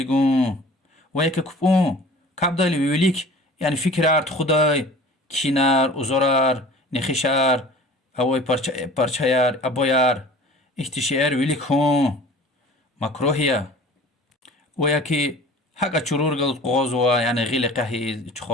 وياكي كبون كابدالي ويوليك يعني فكرات خداي كينار وزرار نخشار اوي پارچayar ابويار احتشار ويليك هون مكروهية وياكي حقا چرور قلت قوزوا يعني غيل قهي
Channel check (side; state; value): both; normal; correlation 0.45